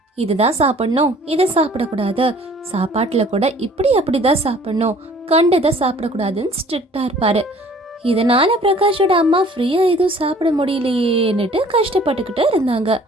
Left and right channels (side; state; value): both; normal; correlation 0.53